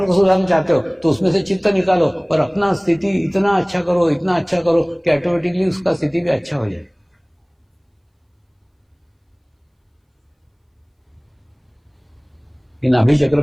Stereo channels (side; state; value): both; identical; correlation 1.00